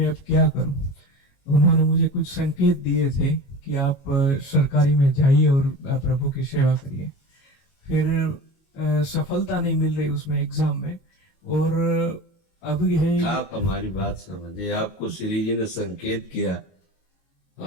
अब क्या करूं। उन्होंने मुझे कुछ संकेत दिए थे कि आप सरकारी में जाइए और प्रभु की सेवा करिए। फिर सफलता नहीं मिल रही उसमें एग्जाम में, और अब है आप हमारी बात समझिए, आपको श्री जी ने संकेत किया,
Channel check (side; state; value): right; late; 22 ms